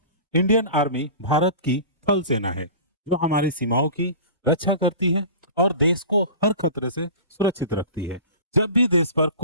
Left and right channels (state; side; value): inverted; both; correlation -0.37